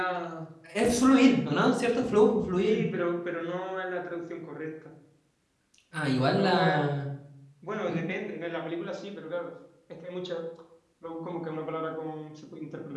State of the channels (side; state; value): both; identical; correlation 1.00